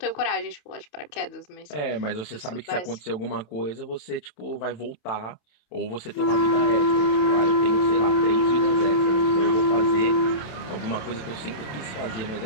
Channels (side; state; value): right; late; 27 ms